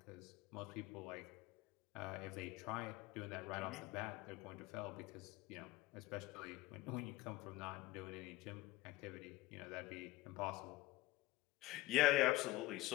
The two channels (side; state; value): right; quieter; 17.8 dB